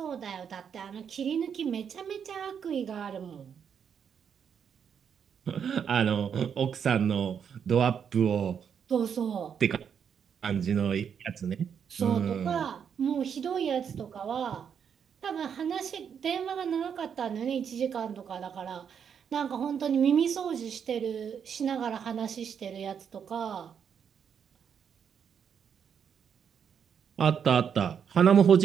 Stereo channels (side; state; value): left; quieter; 7.5 dB